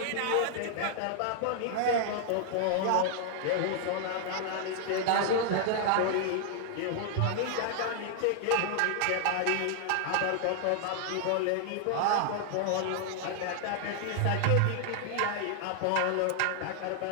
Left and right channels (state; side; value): different; both; correlation -0.01